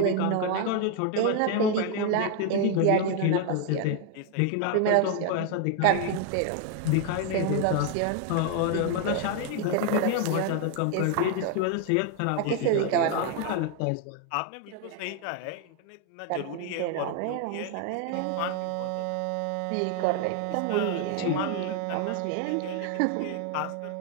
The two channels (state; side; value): different; both; correlation 0.01